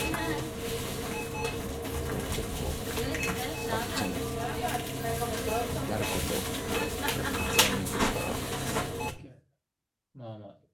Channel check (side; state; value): both; identical; correlation 1.00